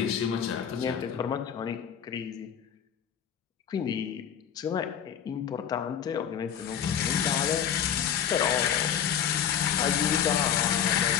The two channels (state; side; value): quieter; right; 8.7 dB